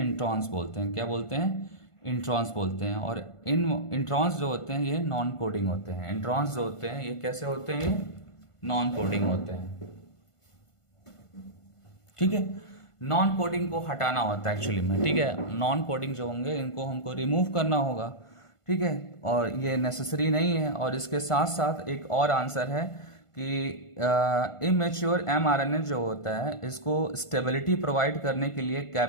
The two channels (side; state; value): right; late; 1.5 ms